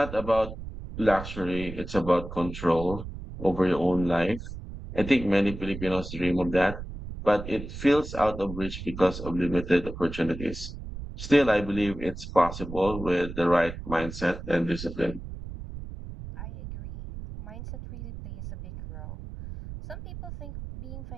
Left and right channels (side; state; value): right; noise; rumble, 10 dB below the sound